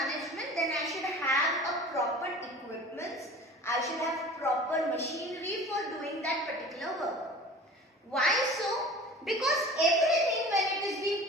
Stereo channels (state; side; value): normal; both; correlation 0.41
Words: then I should have a proper equipment. I should have proper machinery for doing that particular work. Why so? Because everything, when it is